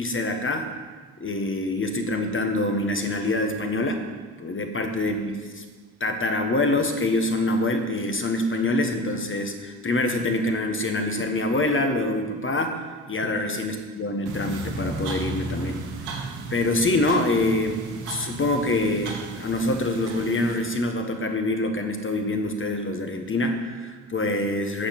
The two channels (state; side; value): normal; both; correlation 0.33